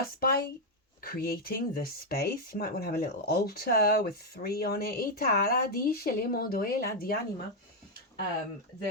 by creating the space, you might want to have a little altar with 3 on it.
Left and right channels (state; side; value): normal; both; correlation 0.01